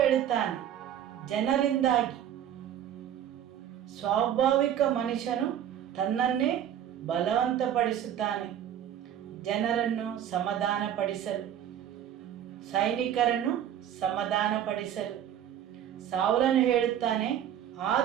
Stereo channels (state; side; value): quieter; left; 10.3 dB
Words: ಜನರಿಂದಾಗಿ. ಸ್ವಾಭಾವಿಕ ಮನುಷ್ಯನು ತನ್ನನ್ನೇ ಬಲವಂತಪಡಿಸುತ್ತಾನೆ ಜನರನ್ನು ಸಮಾಧಾನಪಡಿಸಲು, ಸೈನಿಕರನ್ನು ಸಮಾಧಾನಪಡಿಸಲು. ಸೌಲನು ಹೇಳುತ್ತಾನೆ,